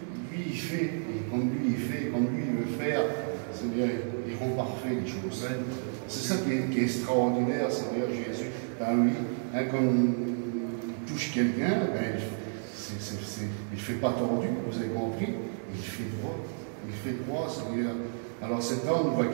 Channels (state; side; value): silent; left; digital silence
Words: il fait, et comme lui il veut faire, Seigneur, il rend parfait les choses. C'est ça qui est extraordinaire, Seigneur Jésus. Ben oui, hein, comme il touche quelqu'un, ben, il ne fait pas tordu, vous avez compris, il fait droit. Il fait droit, Seigneur. Alors cet homme va